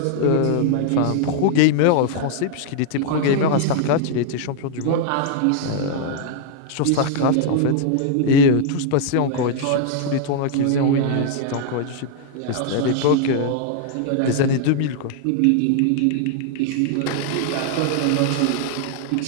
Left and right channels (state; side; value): different; both; correlation 0.00